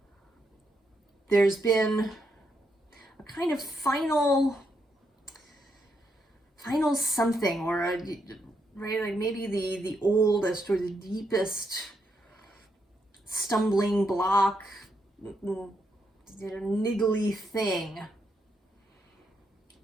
There's been a kind of final something, or a, right, like maybe the oldest or the deepest stumbling block, niggly thing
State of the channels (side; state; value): both; normal; correlation 0.80